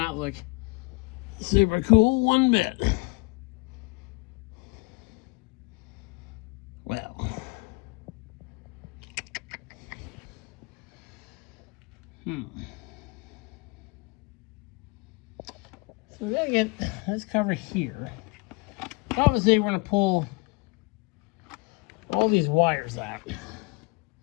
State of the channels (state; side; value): quieter; right; 26.8 dB